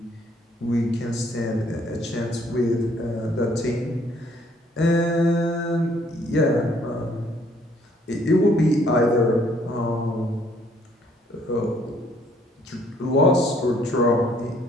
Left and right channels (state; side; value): normal; both; correlation 0.64